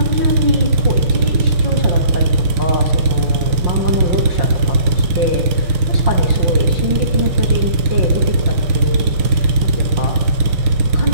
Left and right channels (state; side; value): late; left; 6.4 ms